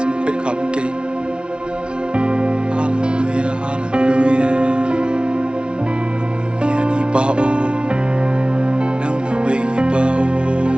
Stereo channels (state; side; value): late; left; 0.057 ms